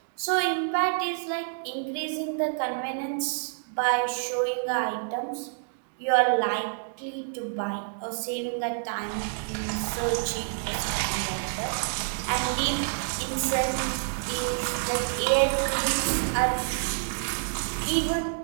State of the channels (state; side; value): silent; left; digital silence